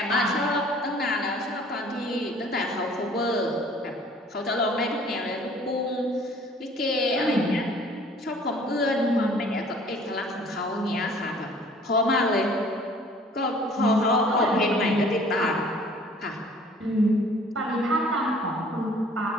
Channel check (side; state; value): both; normal; correlation 0.53